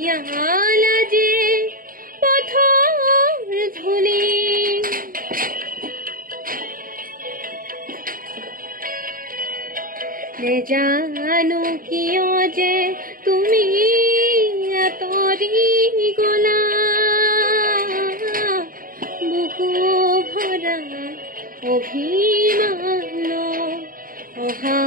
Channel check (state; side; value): late; left; 0.41 ms